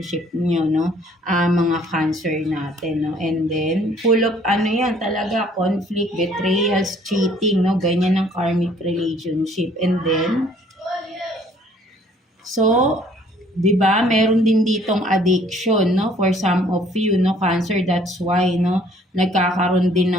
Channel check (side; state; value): both; normal; correlation 0.59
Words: niyo, no? Mga Cancer natin, no? And then full of ano 'yan, talaga conflict, betrayals, cheating, no? Ganyan ang karmic relationship. And then so 'di ba, meron din ditong addiction, no, for some of you, no, Cancer. That's why, no, nagkakaroon din